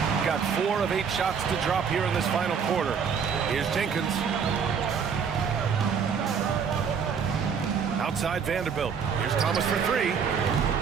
Got 4 of 8 shots to drop here in this final quarter. Here's Jenkins. Outside Vanderbilt. Here's Thomas for 3.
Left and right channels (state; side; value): quieter; left; 6.6 dB